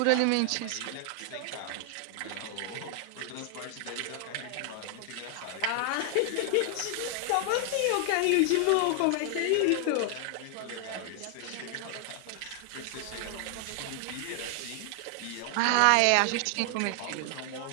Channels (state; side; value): different; both; correlation 0.00